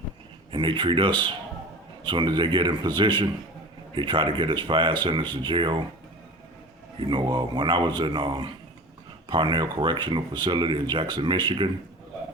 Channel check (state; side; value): normal; both; correlation 0.35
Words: and they treat us. As soon as they get in position, they try to get us fired, send us to jail. You know, when I was in Parnell Correctional Facility in Jackson, Michigan,